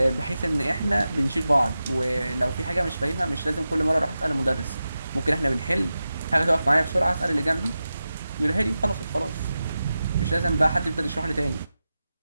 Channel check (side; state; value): both; inverted; correlation -0.92